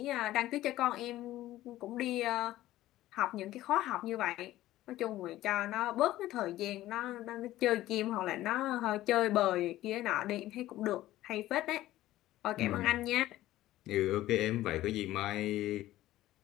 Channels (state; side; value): quieter; right; 15.2 dB